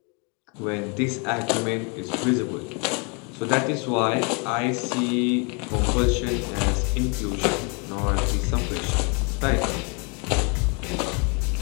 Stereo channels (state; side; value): quieter; right; 34.2 dB